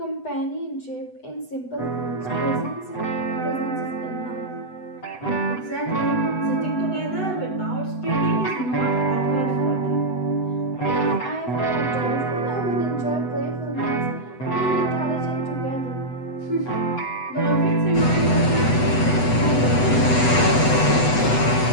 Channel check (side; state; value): right; late; 8.0 ms